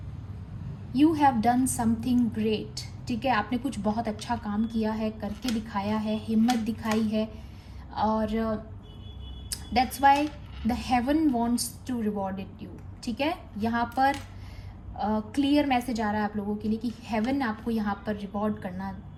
you have done something great, ठीक है। आपने कुछ बहुत अच्छा काम किया है, करके दिखाया है, हिम्मत दिखाई है, और that's why the heaven wants to reward it you, ठीक है। यहाँ पर क्लियर मैसेज आ रहा है आप लोगों के लिए कि हेवन आपको यहाँ पर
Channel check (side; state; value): both; identical; correlation 1.00